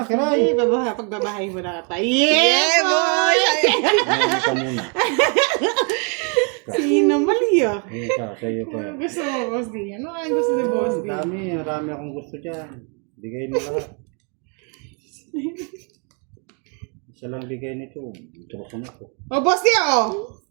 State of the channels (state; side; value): quieter; left; 37.6 dB